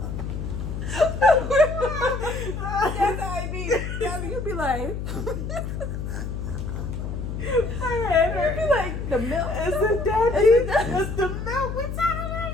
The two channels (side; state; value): left; noise; hum, 5 dB below the sound